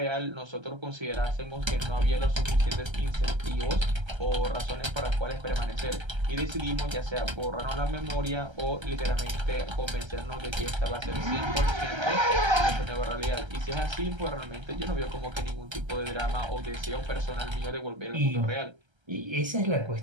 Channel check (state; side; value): late; left; 1.3 ms